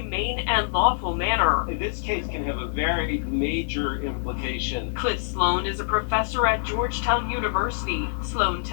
and lawful manner. This case can have a very major implication. Cliff Sloan is a professor at Georgetown University. Sloan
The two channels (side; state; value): right; silent; 62 dB below the other